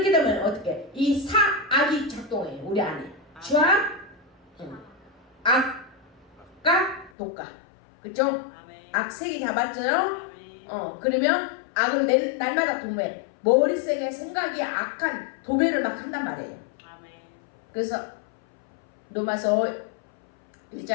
되면 어떻게 이 악이 작동해요 우리 안에. 주악 악 악과 독과. 그쵸? 아멘. 악색이 잡았죠? 아멘. 그러면 악을 날마다 도모해. 머릿속에 생각이 악한 도배를 막 한단 말이에요. 아멘. 그래서 로마서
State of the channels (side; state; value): right; drops out; at 7.1 s